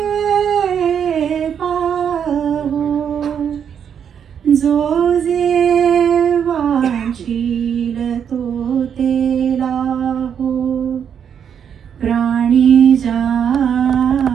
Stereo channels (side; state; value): left; quieter; 8.0 dB